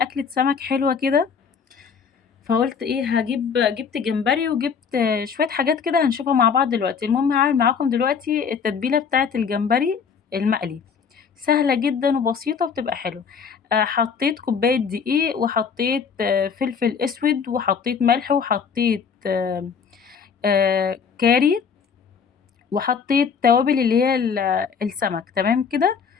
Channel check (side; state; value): right; quieter; 6.3 dB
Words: سمك حلوة كده، فقُلت إيه، جِبت جمبري وجِبت شوية حاجات كده هنشوفها مع بعض دلوقتي. المهم هاعمل معاكم دلوقتي التتبيلة بتاعة الجمبري المقلي، سهلة جدًا وبسيطة وبتبقى حلوة. حطيت كوباية دقيق، وحطيت فلفل أسود، وحطيت ملح، وحطيت كاري، وحطيت توابل اللي هي السمك، تمام كده.